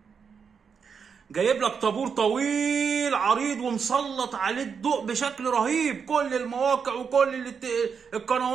جايب لك طابور طويل عريض ومسلط عليه الضوء بشكل رهيب، كل المواقع وكل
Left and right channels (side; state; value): left; quieter; 6.3 dB